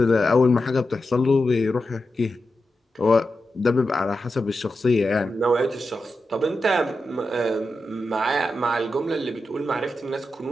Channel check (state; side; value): normal; both; correlation 0.89